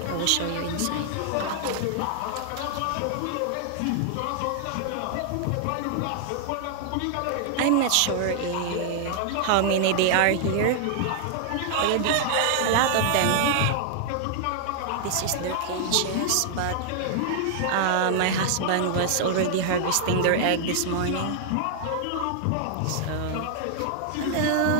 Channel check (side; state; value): both; different; correlation -0.01